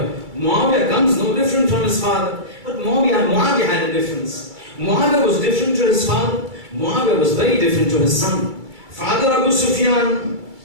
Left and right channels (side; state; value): left; late; 2.3 ms